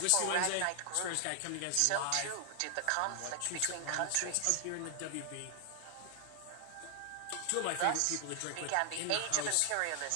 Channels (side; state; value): both; different; correlation 0.00